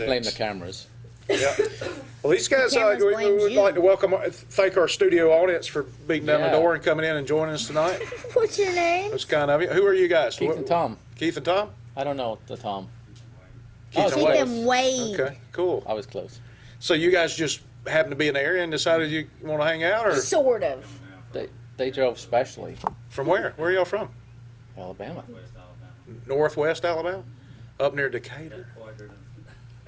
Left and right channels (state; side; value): identical; both; correlation 1.00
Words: blame the cameras. Yeah. Well, these guys, Cameras we blames would you. like to thank our studio audience for beating down the Yeah. door and coming in and joining us tonight. What's your name? That's kind of you. Who are you guys? Keith and Tom. Keith and Tom? I don't know the Tom. Keith and Keith Wade. and Wade. Okay, cool. I was close. So you guys just happened to be in the area and decided you want to hang out, or Sort of. They drove specially. from where? Where are y'all from? Alabama. Northwest Alabama? Up near Decatur?